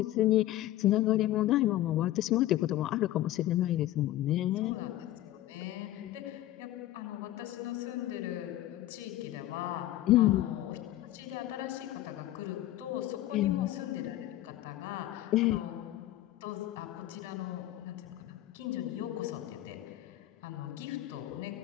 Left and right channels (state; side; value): quieter; right; 14.6 dB